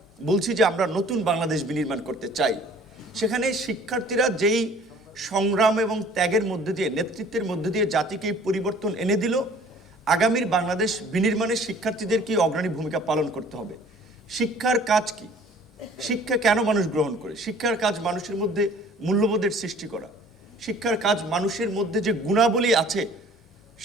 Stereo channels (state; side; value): normal; both; correlation 0.52